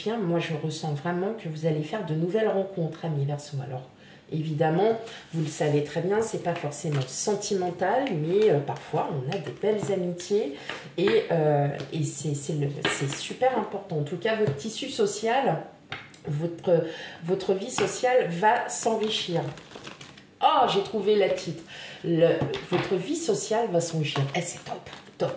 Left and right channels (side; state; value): both; identical; correlation 1.00